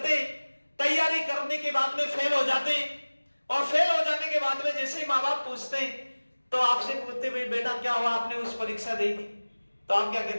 तैयारी करने के बाद में फेल हो जाते और फेल हो जाने के बाद में जैसे ही माँ बाप पूछते हैं तो आपसे पूछते बेटा क्या हुआ, आपने उस परीक्षा दी थी, तो आप क्या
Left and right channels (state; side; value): inverted; both; correlation -1.00